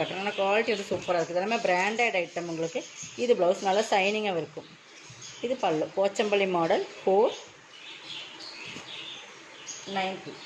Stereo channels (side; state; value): both; identical; correlation 1.00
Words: ஆனால் குவாலிட்டி வந்து சூப்பராக இருக்குது. எல்லாமே பிராண்டட் ஐட்டம் உங்களுக்கு. இது ப்ளவுஸ் நல்லா ஷைனிங்காக இருக்கும். இது பல்லு போச்சம்பள்ளி மாடல் 490.